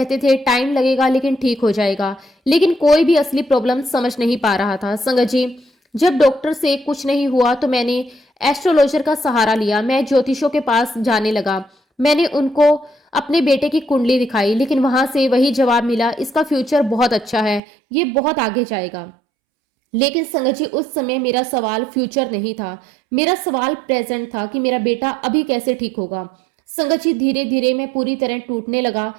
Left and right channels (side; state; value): left; drops out; at 17.6 s